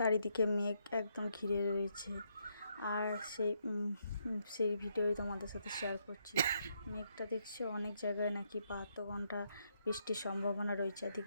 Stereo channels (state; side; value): inverted; both; correlation -0.77